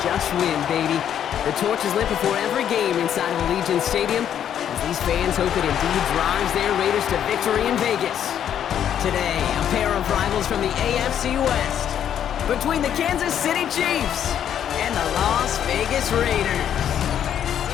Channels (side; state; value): right; quieter; 9.6 dB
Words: just win, baby. The torch is lit before every game inside of Allegiant Stadium, as these fans hope it indeed drives their Raiders to victory in Vegas. Today, a pair of rivals from the AFC West, between the Kansas City Chiefs and the Las Vegas Raiders.